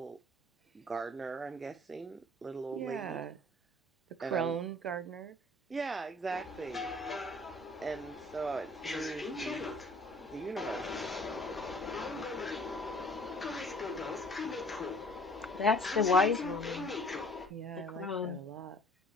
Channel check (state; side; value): normal; both; correlation 0.53